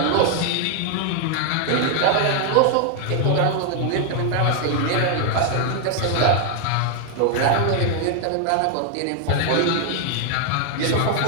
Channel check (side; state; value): both; different; correlation 0.00